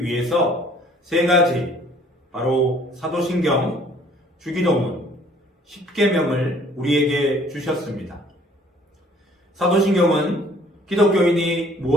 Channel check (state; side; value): normal; both; correlation 0.56